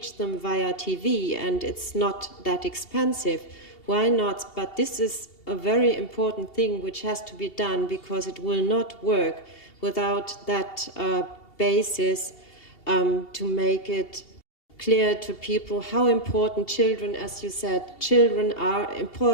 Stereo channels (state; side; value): late; right; 2.7 ms